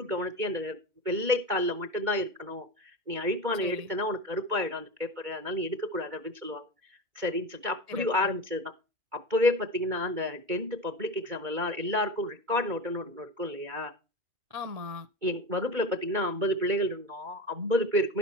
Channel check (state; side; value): late; left; 2.2 ms